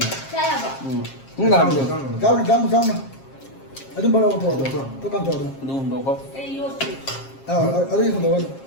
ꯆꯥꯌꯥꯕ ꯆꯥꯎꯅ ꯑꯗꯨꯝ ꯕꯔꯥ ꯄꯣꯔꯛꯑꯣ ꯇꯣ ꯀꯥꯝ ꯇꯧꯔꯣ ꯑꯗꯨ ꯍꯨꯟꯗꯣꯛꯀꯣ ꯑꯩ ꯌꯣꯠꯇ꯭ꯔꯤ ꯑꯗꯨꯒꯤ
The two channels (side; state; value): right; late; 7.4 ms